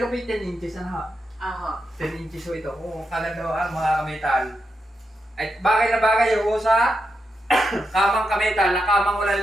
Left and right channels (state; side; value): normal; both; correlation 0.85